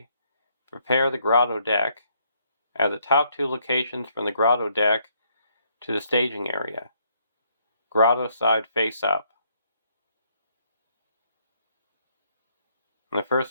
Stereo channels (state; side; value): inverted; both; correlation -0.70